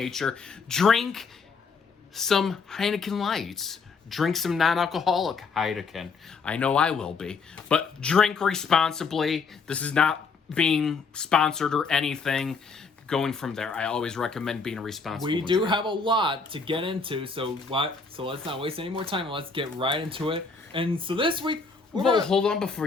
Drink some Heineken Lights. Drink some non-alcoholic Heineken. I know I will be. But drink responsibly. This is not being sponsored or anything. Going from there, I always recommend being responsible. We do have a lot to get into, so let's not waste any more time and let's get right into it. And so this week, Hold on before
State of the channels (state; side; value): quieter; right; 4.9 dB